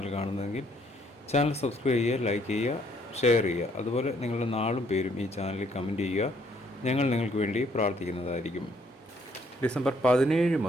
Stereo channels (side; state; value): both; normal; correlation 0.67